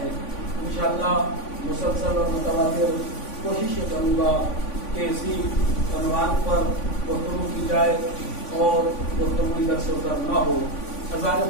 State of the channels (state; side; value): late; right; 3.5 ms